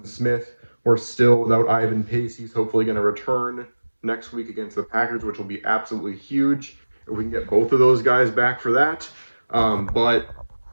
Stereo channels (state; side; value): inverted; both; correlation -1.00